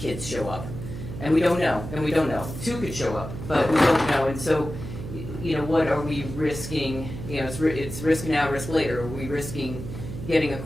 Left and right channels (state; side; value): noise; right; hum, 9 dB below the sound